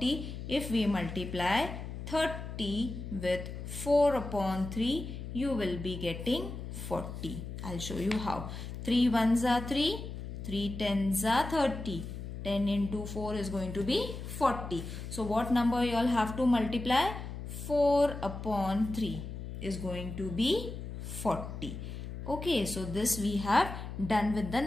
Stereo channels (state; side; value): noise; left; hum, 8 dB below the sound